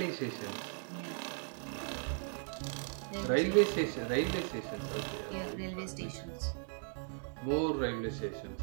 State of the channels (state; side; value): silent; left; 53 dB below the other